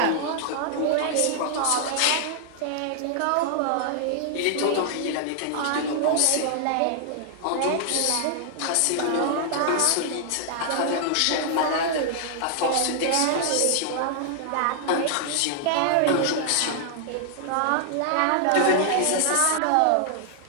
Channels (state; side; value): different; both; correlation -0.01